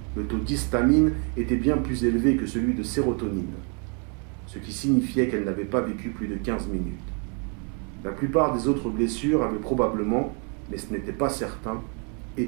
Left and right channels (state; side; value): quieter; left; 38.1 dB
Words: Le taux d'histamine était bien plus élevé que celui de sérotonine, ce qui signifiait qu'elle n'avait pas vécu plus de 15 minutes. La plupart des autres blessures avaient probablement, mais ce n'était pas certain,